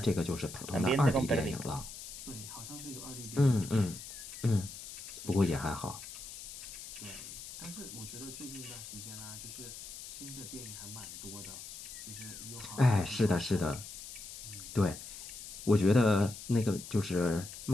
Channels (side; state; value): left; noise; hiss, 11 dB below the sound